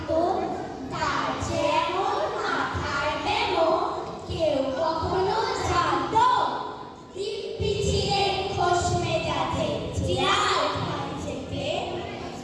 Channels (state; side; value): identical; both; correlation 1.00